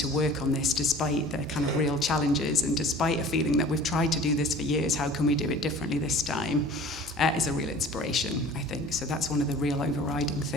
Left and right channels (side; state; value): both; normal; correlation 0.45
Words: work on this, despite the kind of real challenges and despite a feeling that we've tried to do this for years, how can we do it differently this time, is a real inspiration, I think. So that's one of the real overriding